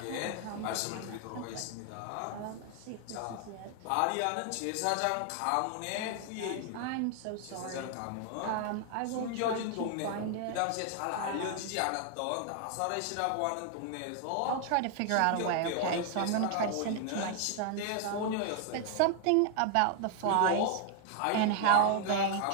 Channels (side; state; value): both; different; correlation 0.00